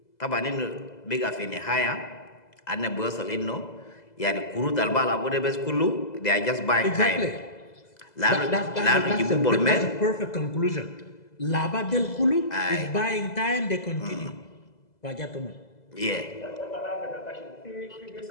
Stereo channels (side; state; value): right; late; 2.0 ms